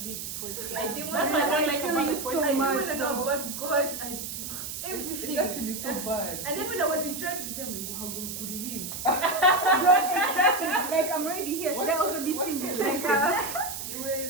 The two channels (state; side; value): noise; right; hiss, 7 dB below the sound